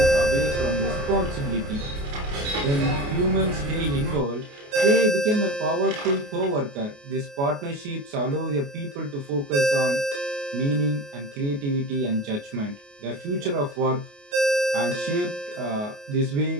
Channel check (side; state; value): left; late; 28 ms